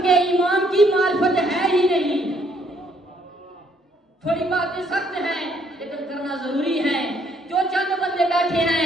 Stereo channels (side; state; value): both; normal; correlation 0.68